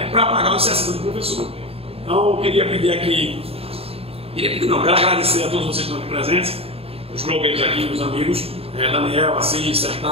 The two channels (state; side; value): late; left; 0.28 ms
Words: para pagar os 60% do professor. Então eu queria pedir aqui, quero agradecer a todos vocês que estão aqui presentes, os blogueiros aqui, os amigos, Daniel, Assis,